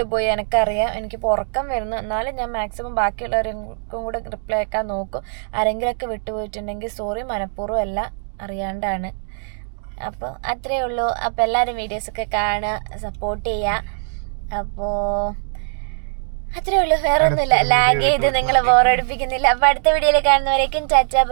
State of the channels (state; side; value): silent; left; digital silence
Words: എനിക്കറിയാം, എനിക്കിപ്പോൾ ഉറക്കം വരുന്നു. എന്നാലും ഞാൻ മാക്സിമം ബാക്കിയുള്ളവർക്കും കൂടെ റിപ്ലൈ അയക്കാൻ നോക്കും. ആരെങ്കിലുമൊക്കെ വിട്ടുപോയിട്ടുണ്ടെങ്കിൽ സോറി, മനഃപൂർവ്വം അല്ല, അറിയാണ്ടാണ്. അപ്പോൾ അത്രയേ ഉള്ളൂ. അപ്പോൾ എല്ലാവരും വീഡിയോസൊക്കെ കാണുക, സപ്പോർട്ട് ചെയ്യുക. അപ്പോൾ അത്രയേ ഉള്ളൂ, വേറെ ഒന്നുമില്ല. ലാഗ് ചെയ്ത് നിങ്ങൾ ബോറടിപ്പിക്കുന്നില്ല. അപ്പോൾ അടുത്ത വീഡിയോയിൽ കാണുന്നവരേക്കും ടാറ്റ